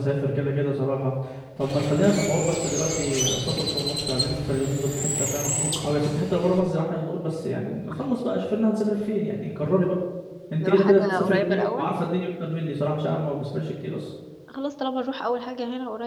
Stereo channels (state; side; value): identical; both; correlation 1.00